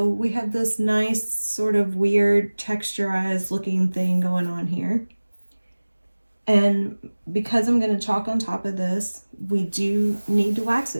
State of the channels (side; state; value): both; inverted; correlation -1.00